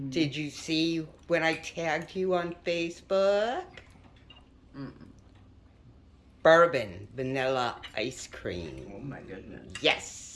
Did you see when I tagged you on Facebook? Bourbon vanilla ice cream. Oh my goodness.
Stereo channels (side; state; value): both; identical; correlation 1.00